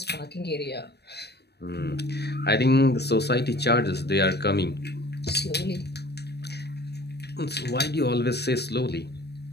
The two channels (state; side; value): late; right; 0.48 ms